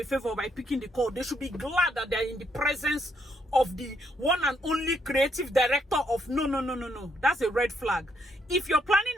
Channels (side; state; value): both; normal; correlation 0.74